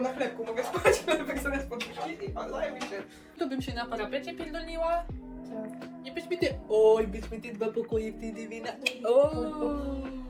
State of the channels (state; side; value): identical; both; correlation 1.00